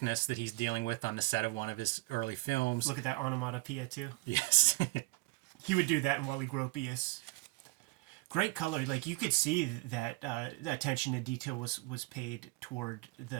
that he's dealing with on the set of one of his early films. Look at that onomatopoeia, too. Yes. He would do that in Wally Gropius. Great color. You could see that attention to detail was paid toward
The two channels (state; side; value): quieter; left; 23.0 dB